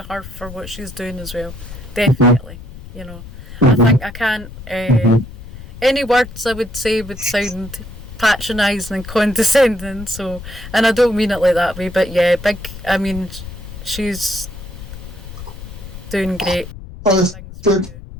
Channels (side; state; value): left; noise; rumble, 14 dB below the sound